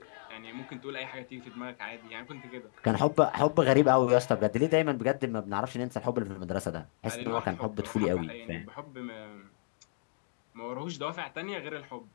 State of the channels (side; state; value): right; silent; 56 dB below the other